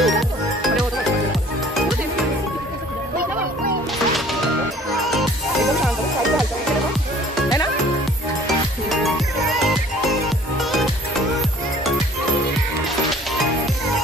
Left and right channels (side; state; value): both; normal; correlation 0.52